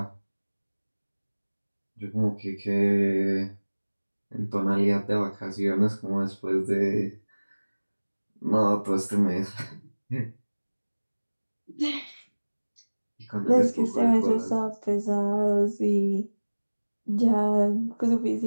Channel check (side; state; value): both; inverted; correlation -1.00